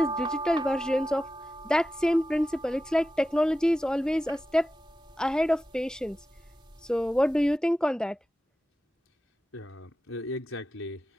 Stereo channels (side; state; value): both; normal; correlation 0.93